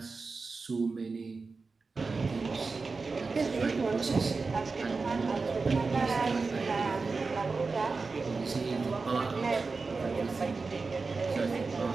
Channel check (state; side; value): quieter; left; 4.2 dB